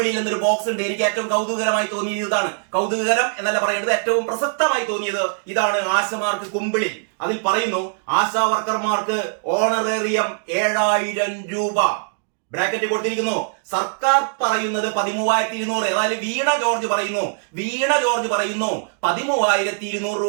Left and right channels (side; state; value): left; silent; 60 dB below the other